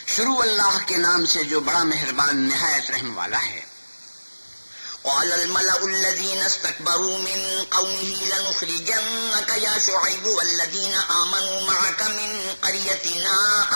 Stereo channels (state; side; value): inverted; both; correlation -1.00